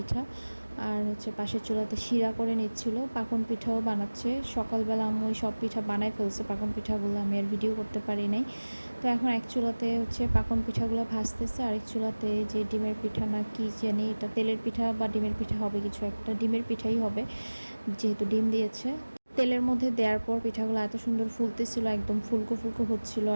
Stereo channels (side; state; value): both; inverted; correlation -1.00